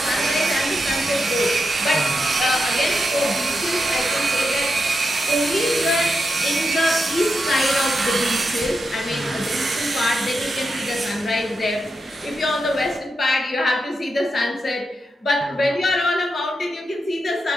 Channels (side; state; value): both; normal; correlation 0.86